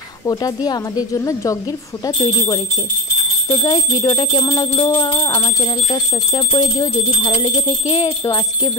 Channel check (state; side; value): normal; both; correlation 0.21